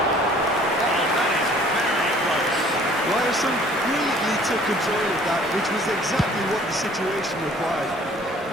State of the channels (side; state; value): both; normal; correlation 0.54